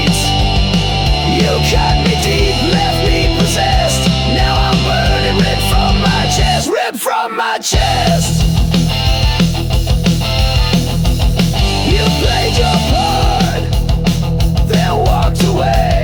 You cut me deep, left me possessed. Now I'm burning, ripped from my chest, ripped from my chest. You played your part, then walked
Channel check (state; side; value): identical; both; correlation 1.00